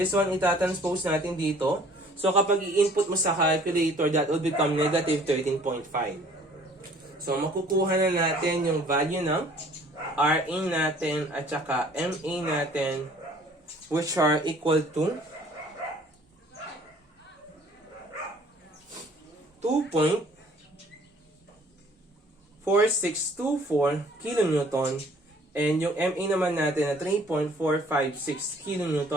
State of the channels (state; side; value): normal; both; correlation 0.55